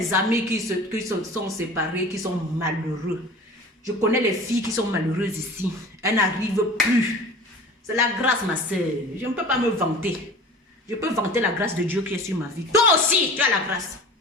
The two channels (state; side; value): normal; both; correlation 0.40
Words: amis qui sont séparés, qui sont malheureux. Je connais les filles qui sont malheureuses ici. Elles n'arrivent plus. C'est la grâce, ma soeur. Je ne peux pas me vanter. Je peux vanter la grâce de Dieu qui est sur ma vie. Toi aussi, tu as la grâce.